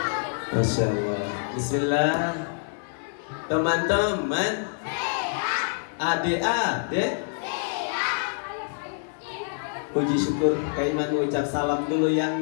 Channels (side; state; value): right; silent; digital silence